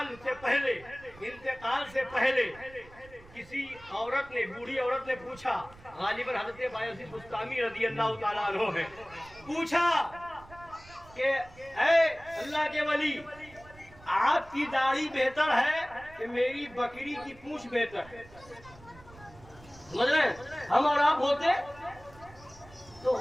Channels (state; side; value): noise; right; rumble, 22 dB below the sound